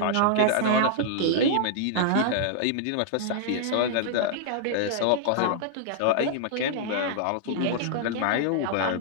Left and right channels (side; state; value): both; different; correlation -0.01